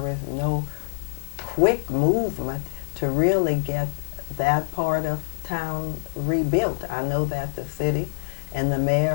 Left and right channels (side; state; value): right; silent; digital silence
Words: is no quick movement to really get that part of town rebuilt. I know that the city and the